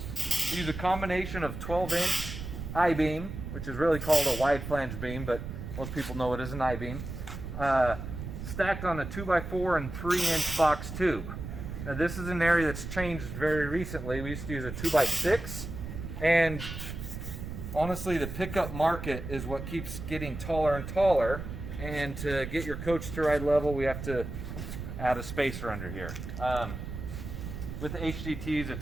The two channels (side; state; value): right; noise; rumble, 8 dB below the sound